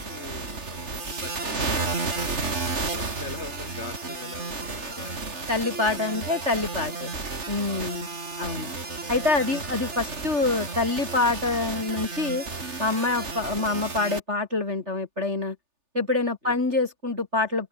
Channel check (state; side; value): late; left; 3.4 ms